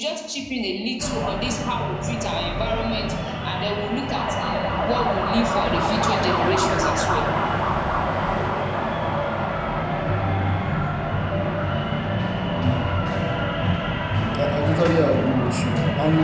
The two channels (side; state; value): both; identical; correlation 1.00